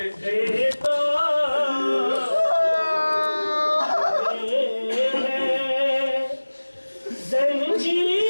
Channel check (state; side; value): inverted; both; correlation -1.00